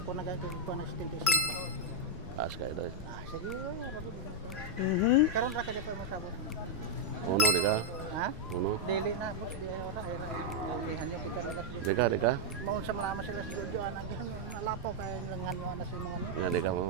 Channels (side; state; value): both; normal; correlation -0.02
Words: Kung nagagawin ko na 75. Taas kayo doon. Sige, rabi din ako. Karon ra ka di pa masabot. Uno, di ka? Ha? Uno. Dili na, boss, di ay ora, ay lihan yo kita nila. Di ka? Maun sa malaman sila sa Jojo anak nalapaw kay langan yo na sa mga ni. Nga, di ka mo